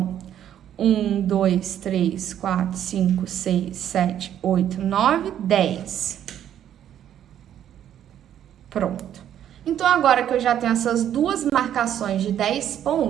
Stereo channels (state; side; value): quieter; left; 10.5 dB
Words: 1, 2, 3, 4, 5, 6, 7, 8, 9, 10. Pronto. Então, agora que eu já tenho essas 2 marcações de 10